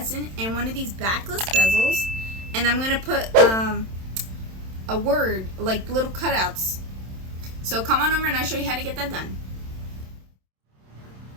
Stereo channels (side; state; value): left; late; 27 ms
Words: in one of these backless bezels. And I'm going to put a word, like little cutouts. So come on over and I'll show you how to get that done.